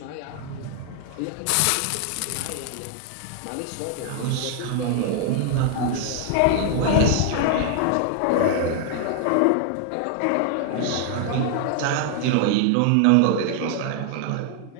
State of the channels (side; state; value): both; different; correlation 0.00